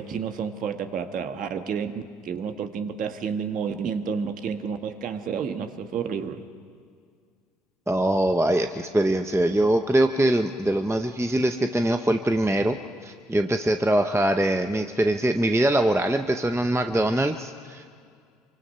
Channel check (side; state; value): both; normal; correlation 0.84